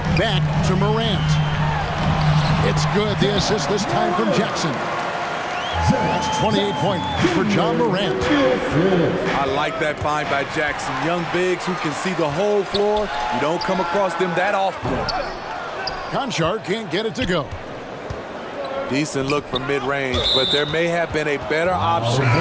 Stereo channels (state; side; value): identical; both; correlation 1.00